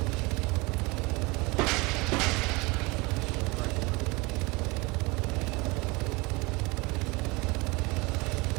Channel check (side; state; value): left; quieter; 25.3 dB